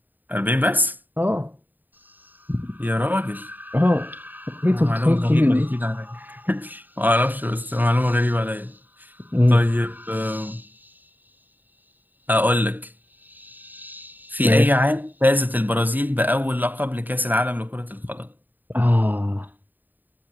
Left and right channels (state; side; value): late; left; 0.088 ms